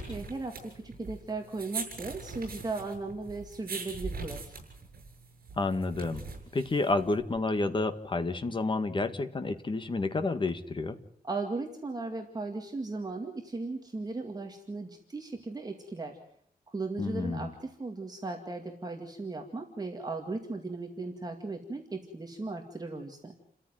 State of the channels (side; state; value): both; normal; correlation 0.70